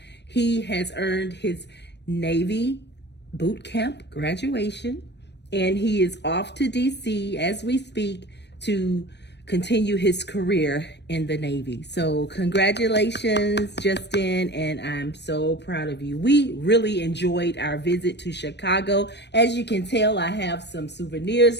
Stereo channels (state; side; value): late; right; 0.50 ms